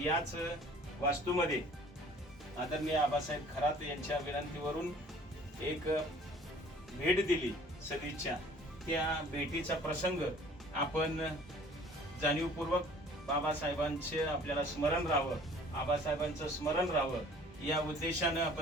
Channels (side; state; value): both; normal; correlation 0.52